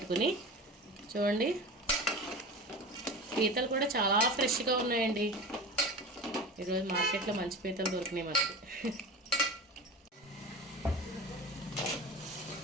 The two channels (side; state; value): both; normal; correlation 0.32